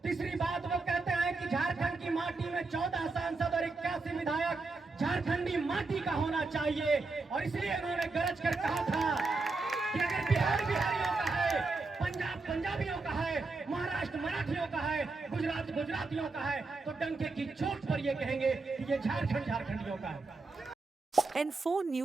तीसरी बात वो कहते हैं कि झारखंड की माटी में 14 सांसद और 81 विधायक झारखंडी माटी का होना चाहिए, और इसलिए उन्होंने गरज कर कहा था कि अगर बिहार बिहारियों का है, पंजाब पंजाबियों का है, महाराष्ट्र मराठियों का है, गुजरात गुजरातियों का है, तो डंके की चोट पर ये कहेंगे कि ये झारखंड झारखंडियों का है। N4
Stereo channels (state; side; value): quieter; left; 3.7 dB